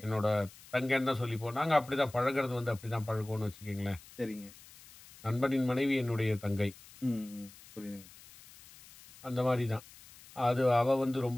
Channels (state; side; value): noise; left; hiss, 21 dB below the sound